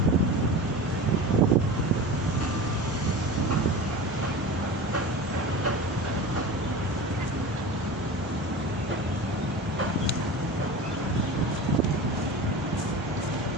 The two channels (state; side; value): normal; both; correlation 0.32